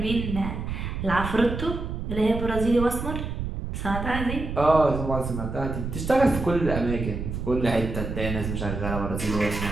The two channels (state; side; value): noise; right; rumble, 5 dB below the sound